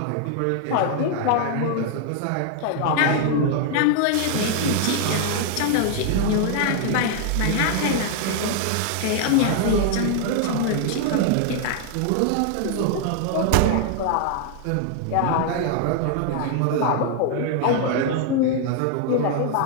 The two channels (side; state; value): both; different; correlation 0.00